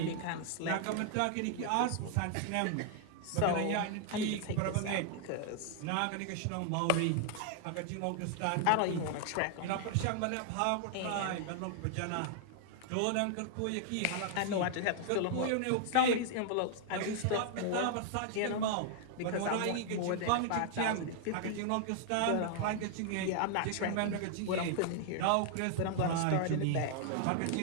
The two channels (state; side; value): different; both; correlation 0.00